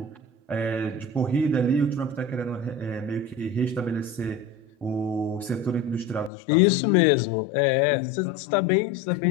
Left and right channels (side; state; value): right; drops out; at 6.3 s